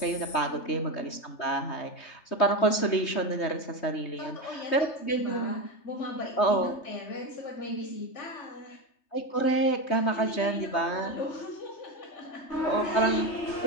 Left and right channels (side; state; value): right; late; 3.2 ms